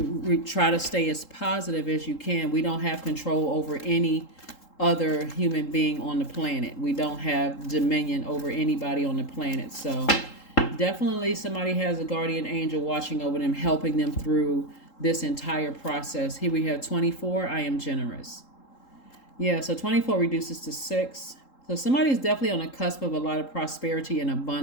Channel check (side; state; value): right; late; 3.8 ms